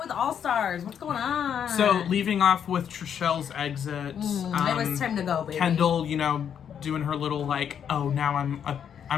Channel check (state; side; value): quieter; right; 8.4 dB